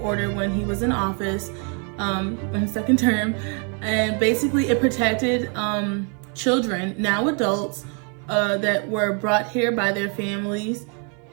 order when he was in office, in his second term, and basically it protected children, now adults, that were brought here by their families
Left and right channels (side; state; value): left; quieter; 38.6 dB